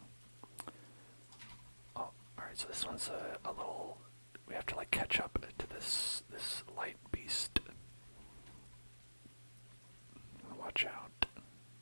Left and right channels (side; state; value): both; inverted; correlation -1.00